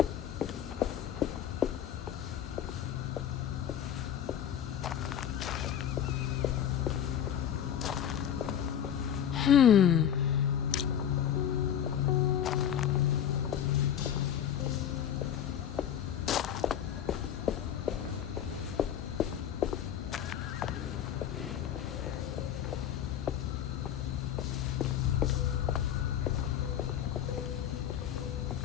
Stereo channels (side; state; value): right; quieter; 9.6 dB